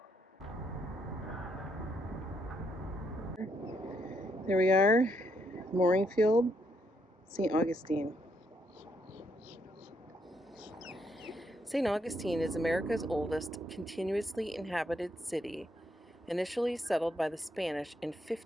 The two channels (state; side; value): normal; both; correlation 0.75